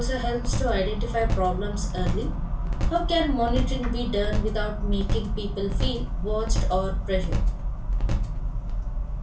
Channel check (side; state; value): both; identical; correlation 1.00